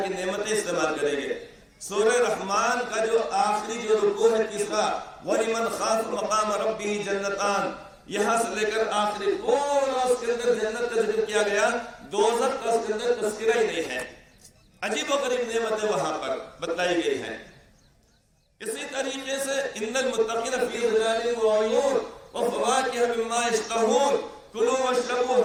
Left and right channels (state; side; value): identical; both; correlation 1.00